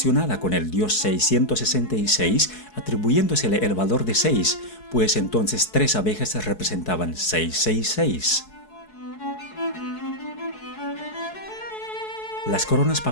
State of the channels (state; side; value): late; right; 4.7 ms